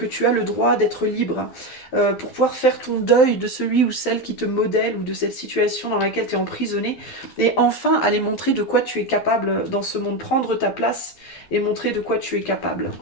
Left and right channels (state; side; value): late; right; 12 ms